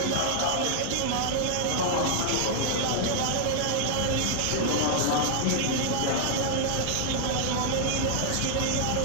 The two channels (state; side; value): different; both; correlation -0.01